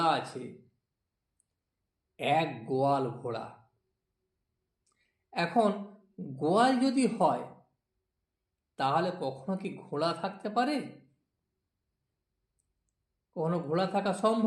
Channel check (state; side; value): identical; both; correlation 1.00